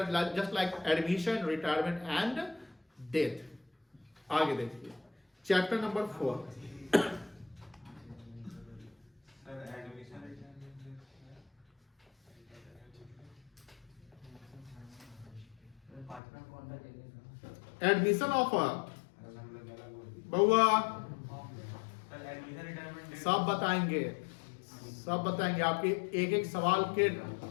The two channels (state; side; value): drops out; right; at 16.2 s